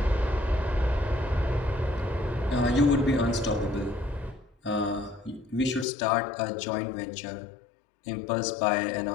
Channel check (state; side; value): drops out; right; at 5.9 s